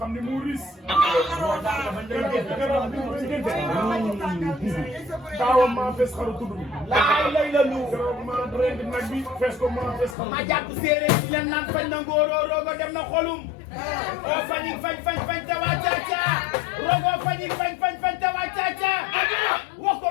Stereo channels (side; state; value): right; drops out; at 10.2 s